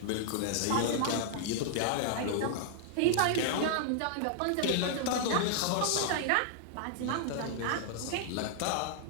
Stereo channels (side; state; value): both; different; correlation -0.01